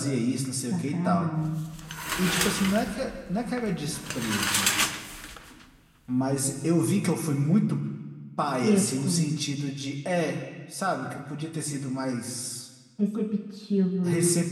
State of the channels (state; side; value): identical; both; correlation 1.00